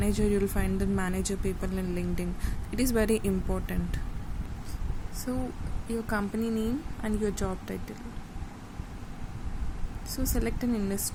you'll find the manager people in LinkedIn. It is very important. So your company name and your job title. So select an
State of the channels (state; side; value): identical; both; correlation 1.00